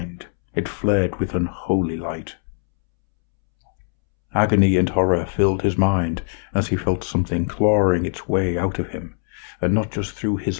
it flared with unholy light. Agony and horror filled his mind as he felt something clawing its way out of him, and not just through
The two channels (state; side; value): silent; right; 65 dB below the other